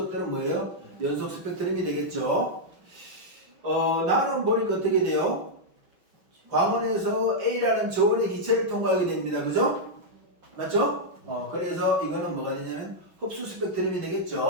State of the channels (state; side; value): late; left; 5.8 ms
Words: 뭐예요? 연속 스펙트럼이 되겠죠. 나는 보니까 어떻게 돼요? 광원에서 A라는 저온의 기체를 통과하게 됩니다. 그죠? 맞죠? 그래서 이거는 뭐가 되냐면 흡수 스펙트럼이